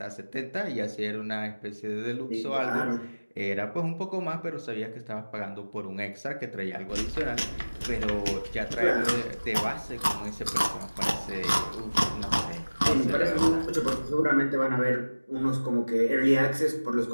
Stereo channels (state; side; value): inverted; both; correlation -1.00